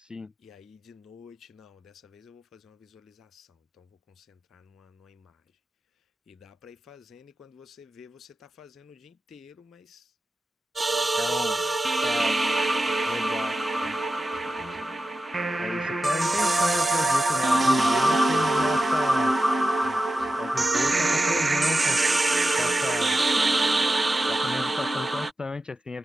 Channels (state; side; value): normal; both; correlation 0.92